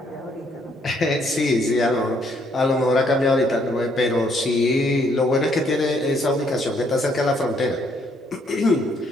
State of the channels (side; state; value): both; normal; correlation 0.69